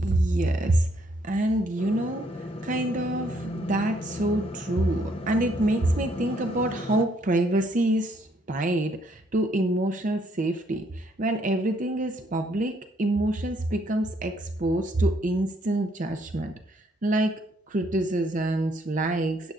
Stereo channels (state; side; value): normal; both; correlation 0.69